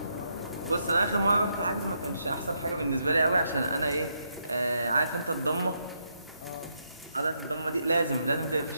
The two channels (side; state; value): both; inverted; correlation -0.79